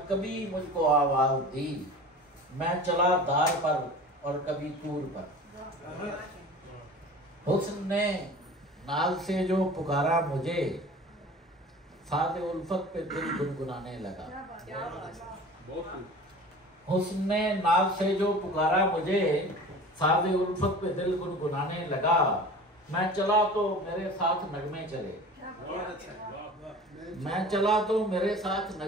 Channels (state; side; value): normal; both; correlation 0.39